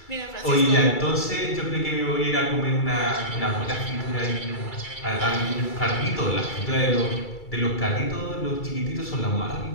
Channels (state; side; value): late; right; 2.3 ms